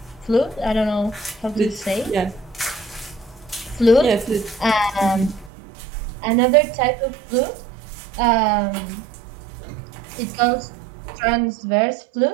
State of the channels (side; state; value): left; drops out; at 5.5 s